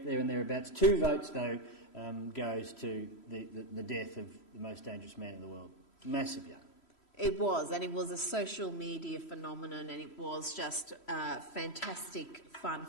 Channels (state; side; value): late; right; 3.0 ms